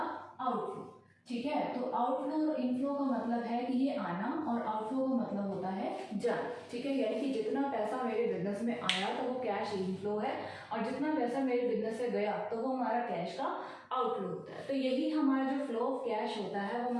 आउटफ्लो। ठीक है, तो आउटफ्लो और इनफ्लो का मतलब है कि ये आना और आउटफ्लो का मतलब होता है जाना। ठीक है, यानी कि जितना पैसा मेरे बिजनेस में आया तो वो कैश इनफ्लो है और जितना पैसा मेरे बिजनेस से गया तो वो हमारा कैश का आउटफ्लो होता है। तो यही हमारा जो फ्लो ऑफ कैश होता है वो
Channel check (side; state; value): both; identical; correlation 1.00